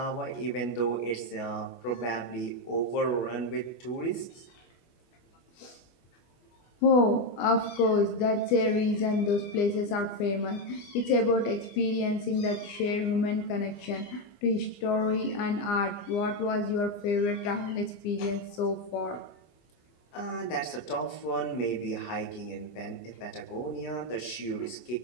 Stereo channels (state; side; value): late; right; 24 ms